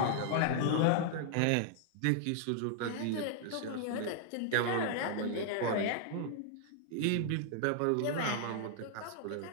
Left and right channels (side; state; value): both; different; correlation 0.00